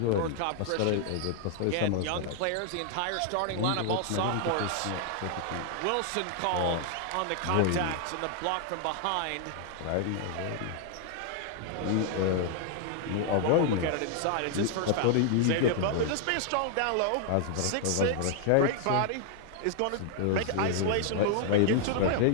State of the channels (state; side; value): different; both; correlation 0.00